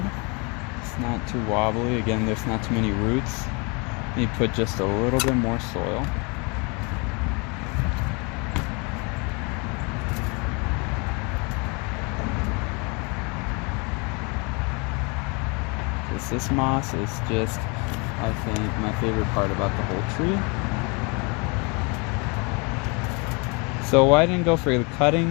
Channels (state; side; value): quieter; right; 31.2 dB